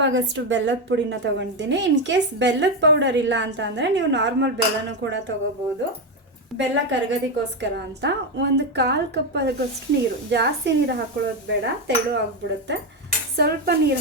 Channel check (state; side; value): normal; both; correlation 0.10